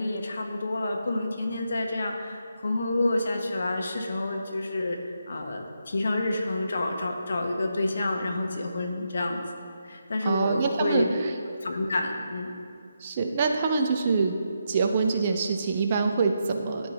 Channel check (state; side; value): inverted; both; correlation -0.82